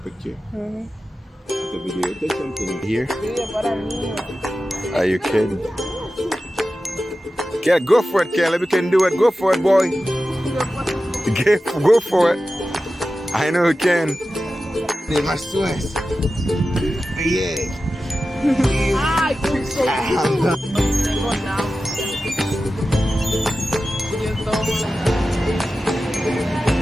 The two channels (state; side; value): normal; both; correlation 0.94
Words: The video, take something here. Are you kidding? Yeah, go for it, Caleb. You can do it. Go for it, boy. Go for it. I know you can. They must West. Yeah.